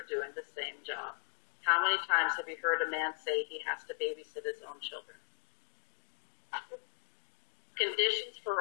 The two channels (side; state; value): right; silent; digital silence